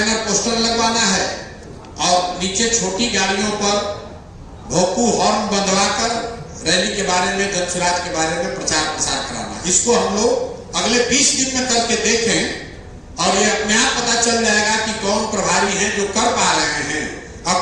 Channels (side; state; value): both; identical; correlation 1.00